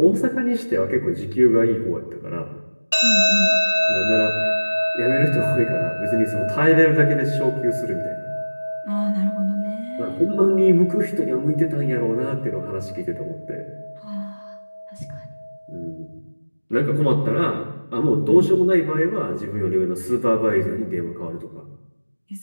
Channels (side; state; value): both; inverted; correlation -1.00